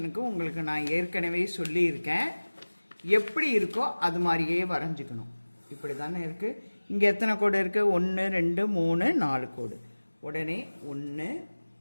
உங்களுக்கு நான் ஏற்கனவே சொல்லியிருக்கேன். எப்படி இருக்கோ அது மாதிரியே வரைஞ்சிக்கணும். இப்படி தானே இருக்குது. இங்கே எத்தனை கோடு இருக்குது? 1 2 3 4 கோடு. உடனே 1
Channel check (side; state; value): both; inverted; correlation -1.00